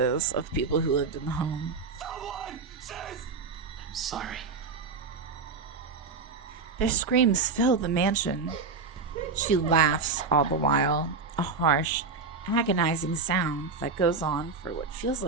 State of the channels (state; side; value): quieter; left; 4.7 dB